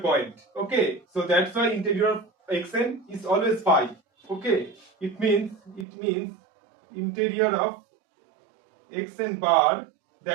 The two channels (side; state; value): left; drops out; at 5.9 s